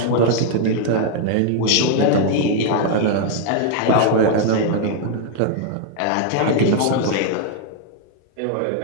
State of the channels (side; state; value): both; different; correlation 0.00